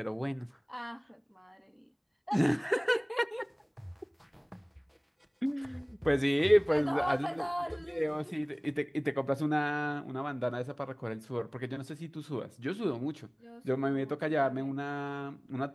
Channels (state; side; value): identical; both; correlation 1.00